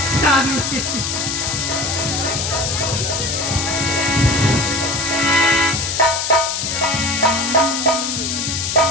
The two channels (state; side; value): noise; left; hiss, 2 dB below the sound